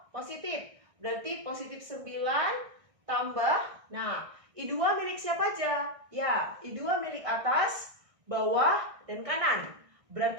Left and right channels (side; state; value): left; late; 1.6 ms